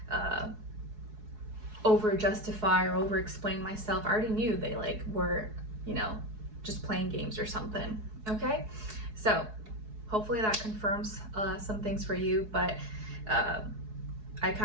over justify or over explain myself. I already knew they were just playing games or something. Okay, so hopefully that confirms some things for you, but I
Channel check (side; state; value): left; late; 4.7 ms